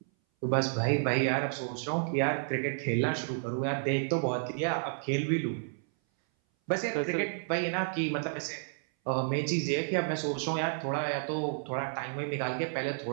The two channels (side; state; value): left; silent; 57 dB below the other